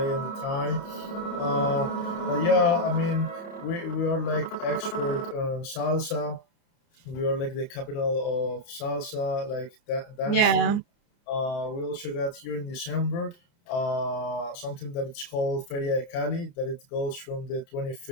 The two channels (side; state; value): right; late; 29 ms